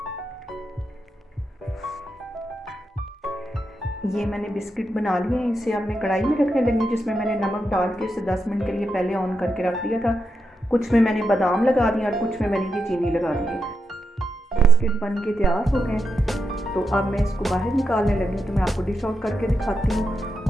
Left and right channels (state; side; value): normal; both; correlation 0.85